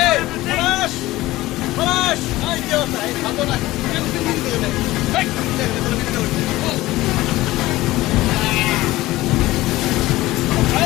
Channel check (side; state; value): right; quieter; 17.7 dB